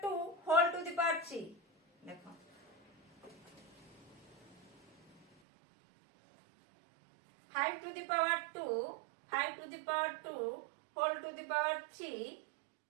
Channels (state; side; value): drops out; left; at 5.2 s